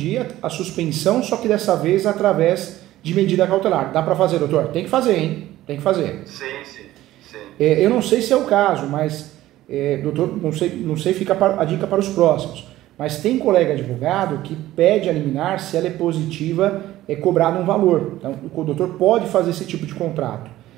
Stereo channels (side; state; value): left; quieter; 15.1 dB